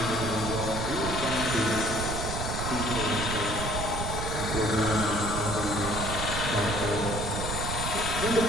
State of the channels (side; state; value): right; noise; rumble, 4 dB below the sound